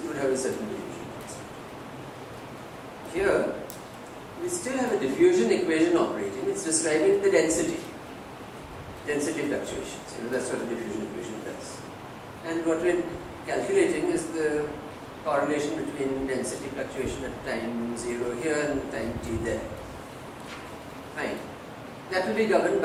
would have a certain diffusion constant. Here, we still have a diffusion equation operating. It's describing the density fluctuations. That's what a diffusion equation does. And what we're calculating is the correlation between density fluctuation at time 0 here and time t there. Fine. That will be governed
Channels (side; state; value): both; identical; correlation 1.00